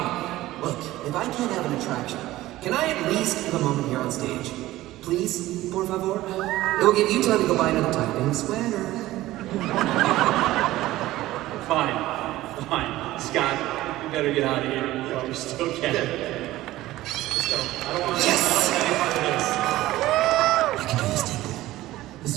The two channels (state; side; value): quieter; left; 16.4 dB